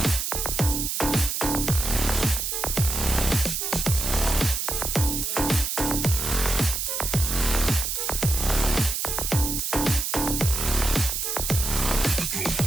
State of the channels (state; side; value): noise; right; hiss, 1 dB below the sound